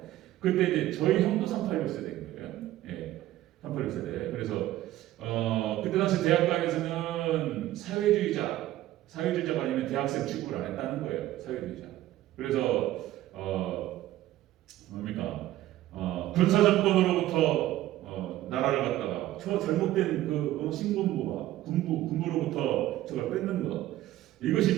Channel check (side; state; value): left; quieter; 14.7 dB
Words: 그때 저희 형도 386세대인 거예요. 386세대. 그래서 그때 당시 대학가에서는 사회주의자가 아니면 대학생 취급을 안 했다는 거예요. 사회주의자. 그래서 군사정권으로부터 나라를 갖다가 저 잘못된 신군부가 군부로부터 저걸 뺏는 것